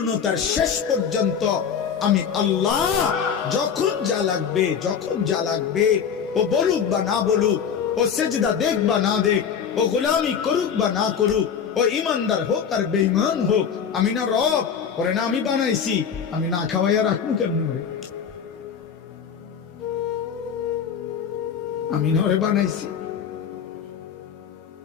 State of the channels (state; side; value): quieter; right; 7.3 dB